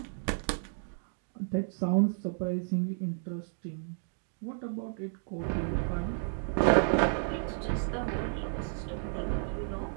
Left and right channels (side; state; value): left; silent; digital silence